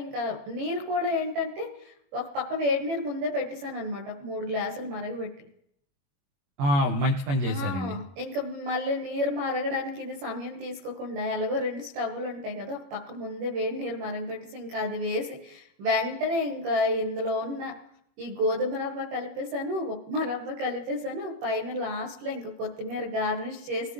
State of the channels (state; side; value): late; left; 21 ms